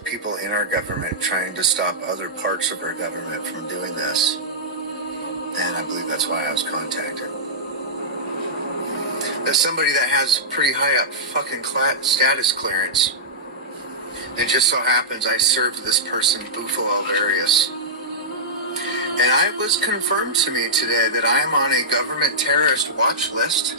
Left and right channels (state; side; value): normal; both; correlation -0.14